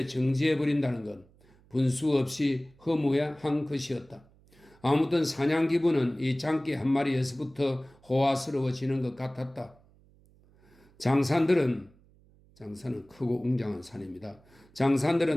정지해버린다는 것, 분수 없이 허무한 것이었다. 아무튼 사냥 기분은 이 장기 한 마리에서부터 호화스러워지는 것 같았다. 장산은 크고 웅장한 산입니다.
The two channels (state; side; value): noise; right; hum, 29 dB below the sound